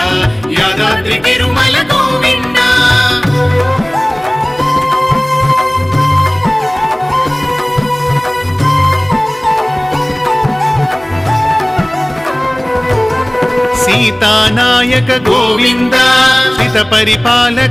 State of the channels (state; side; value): noise; right; hum, 26 dB below the sound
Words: యాదాద్రి తిరుమల గోవింద. సీతానాయక గోవింద, శ్రిత